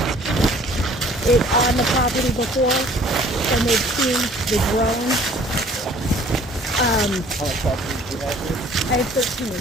it on the property before, and they've seen the drone. How much property do you have here? I have 13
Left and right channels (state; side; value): normal; both; correlation 0.54